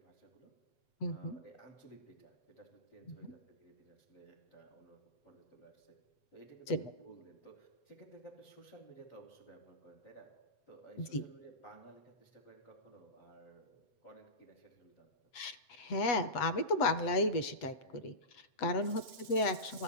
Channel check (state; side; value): late; right; 7.9 ms